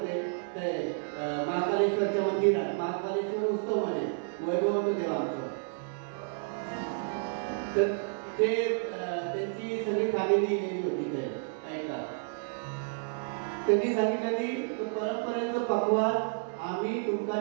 ते महाकालेश्वरच्या मंदिरात महाकालेश्वर उत्सव मध्ये वैभव देवा आमचं. तर ते त्यांची सगळी फॅमिली गेलेली होती ते ऐका. त्यांनी सांगितलं परंपरेचं पक्वान आम्ही तुमका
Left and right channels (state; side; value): silent; left; digital silence